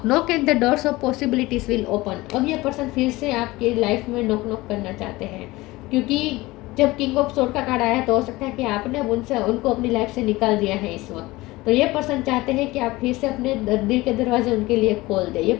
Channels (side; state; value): right; quieter; 20.1 dB